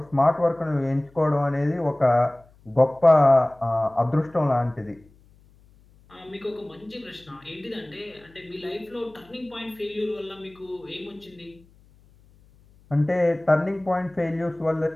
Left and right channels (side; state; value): left; noise; hum, 29 dB below the sound